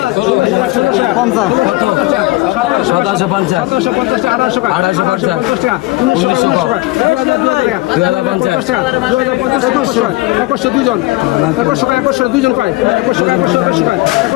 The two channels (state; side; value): quieter; right; 20.4 dB